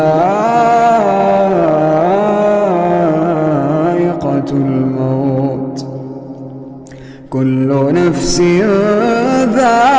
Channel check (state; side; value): identical; both; correlation 1.00